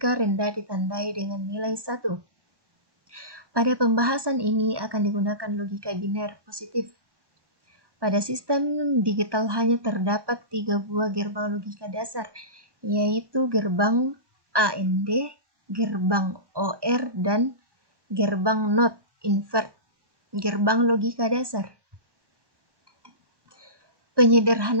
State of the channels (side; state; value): left; late; 1.1 ms